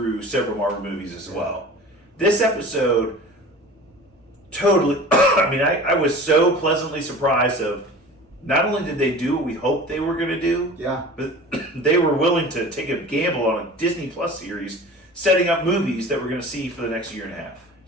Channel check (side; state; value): both; normal; correlation 0.39